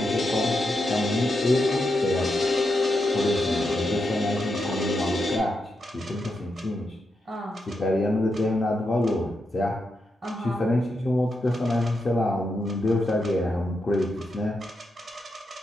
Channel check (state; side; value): normal; both; correlation 0.85